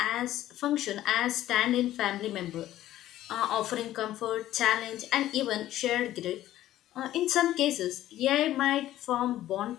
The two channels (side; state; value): right; quieter; 13.7 dB